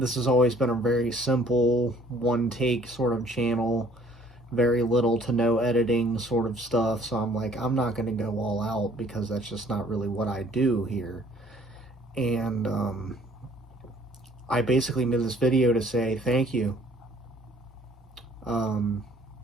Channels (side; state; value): both; normal; correlation 0.57